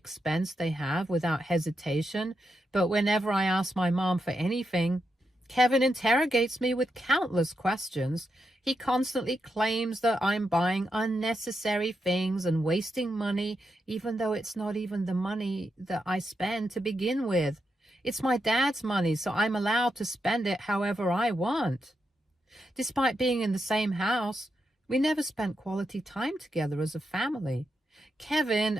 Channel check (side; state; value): both; normal; correlation 0.84